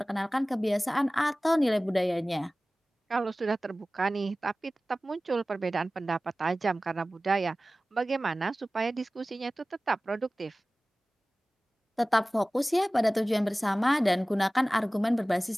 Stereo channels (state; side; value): normal; both; correlation 0.97